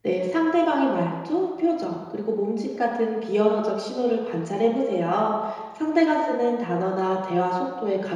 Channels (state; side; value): identical; both; correlation 1.00